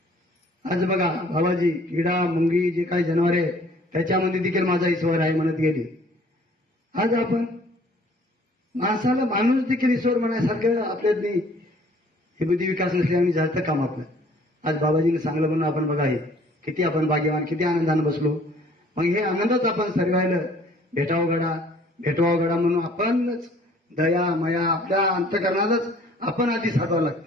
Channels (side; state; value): both; normal; correlation 0.56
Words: आज बघा बाबाजी किडा मुंगी जे काही जनावर आहे त्याच्यामध्ये देखील माझा ईश्वर आहे म्हणत गेली. आज आपण माणसाला माणूस देखील ईश्वर म्हणायसारखं आपल्यात नाही. हे बुद्धी विकास नसल्याने झालं काम आपलं. आज बाबाजीने सांगलं म्हणून आपण बघा हे किती आपण भाग्यवान, किती आनंदानं बसलो. मग हे आनंदच आपण सर्वायला भेटवावं गडा म्हणून आपणच दया मया आपल्या अंतकरणातच आपण आधी साधवावं